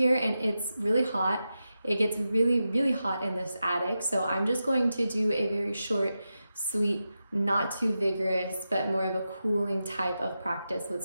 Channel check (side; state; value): both; inverted; correlation -0.90